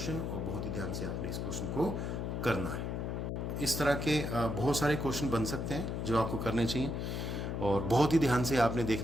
और बहुत ही ध्यान से आपने इस क्वेश्चन को करना है। इस तरह के बहुत सारे क्वेश्चन बन सकते हैं जो आपको करने चाहिए, और बहुत ही ध्यान से आपने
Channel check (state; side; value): noise; left; hum, 2 dB below the sound